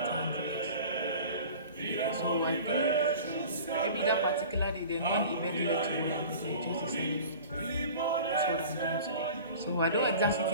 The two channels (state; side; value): inverted; both; correlation -0.40